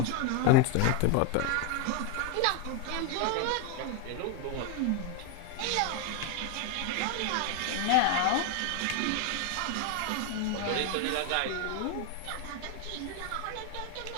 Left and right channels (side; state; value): both; different; correlation 0.01